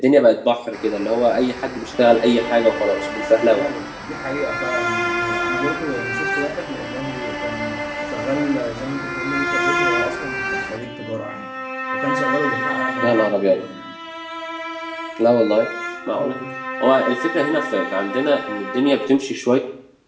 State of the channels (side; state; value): both; identical; correlation 1.00